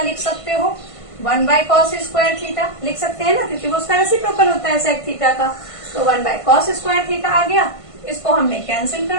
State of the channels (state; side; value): late; right; 1.5 ms